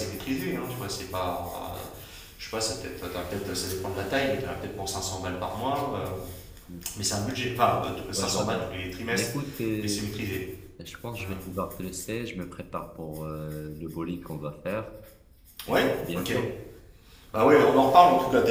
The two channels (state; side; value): identical; both; correlation 1.00